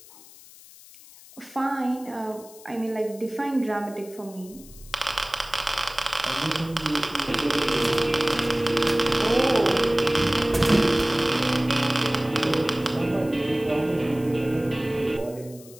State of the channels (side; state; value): left; noise; hiss, 21 dB below the sound